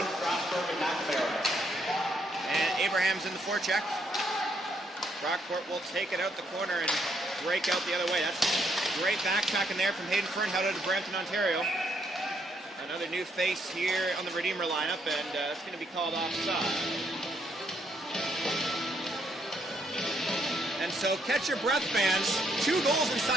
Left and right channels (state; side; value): normal; both; correlation 0.73